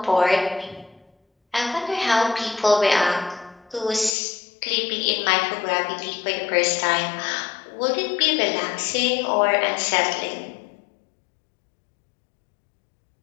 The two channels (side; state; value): right; drops out; at 4.1 s